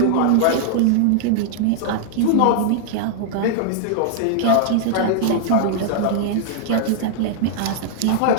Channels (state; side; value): different; both; correlation -0.01